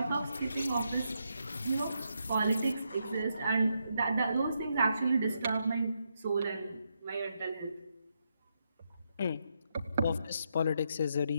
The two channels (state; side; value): inverted; both; correlation -0.81